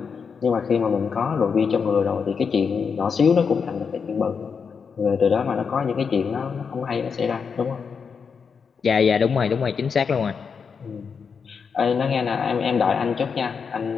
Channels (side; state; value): right; quieter; 6.0 dB